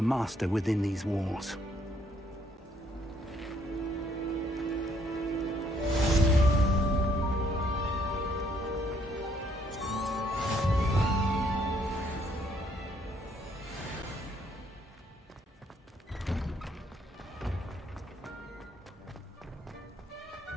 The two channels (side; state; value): both; normal; correlation 0.68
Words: master within these walls.